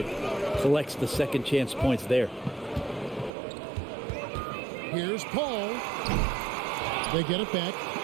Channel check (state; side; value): drops out; left; at 3.3 s